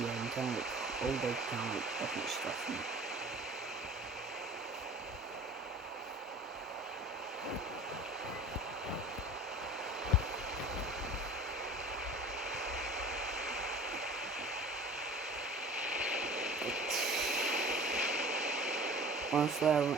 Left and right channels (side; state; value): both; normal; correlation 0.43